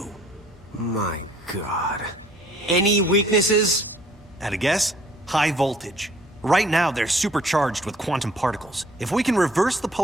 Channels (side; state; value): both; normal; correlation 0.58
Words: My God. Any weaknesses? At a guess? High voltage. Right now, they're supercharged with quantum particles. If we can reverse the